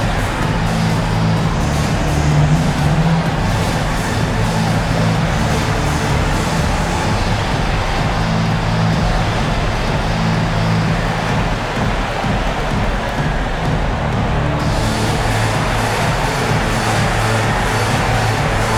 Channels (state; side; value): identical; both; correlation 1.00